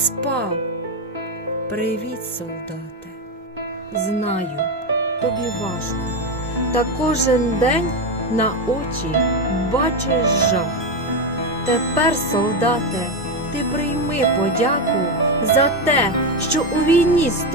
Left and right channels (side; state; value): both; normal; correlation 0.11